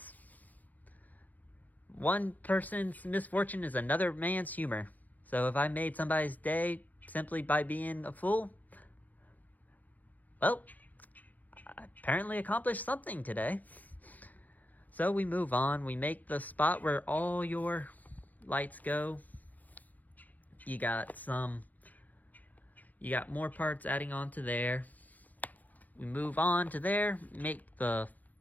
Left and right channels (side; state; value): right; late; 0.081 ms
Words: One person's misfortune is another man's humor. So if I made somebody's day simply by being a fool, well, I apparently accomplished something today. So we move on. We make the spot where all your lights go. You got more parts adding on to there. We move on to there, make the